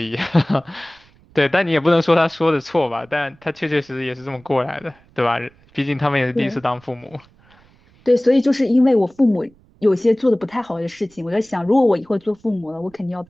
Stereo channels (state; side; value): noise; right; rumble, 30 dB below the sound